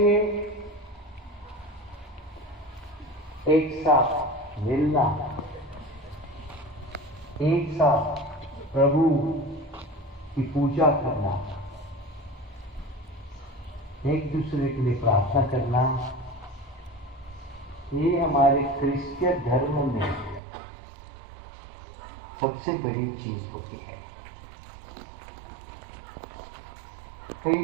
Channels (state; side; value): drops out; left; at 20.4 s